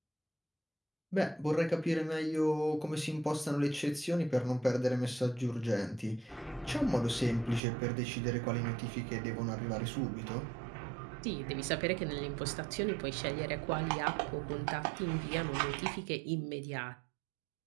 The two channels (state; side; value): drops out; left; at 7.6 s